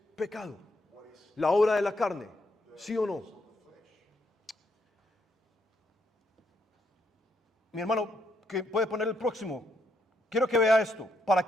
pecado, la obra de la carne, ¿sí o no? Mi hermano, que puede poner el próximo. Quiero que vea esto, para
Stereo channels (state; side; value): normal; both; correlation 0.76